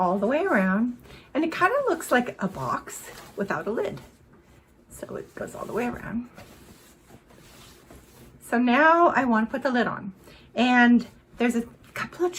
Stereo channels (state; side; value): identical; both; correlation 1.00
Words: the way around and it kind of looks like a box without a lid. So it goes all the way around. So now I want to put the lid on. And there's a couple of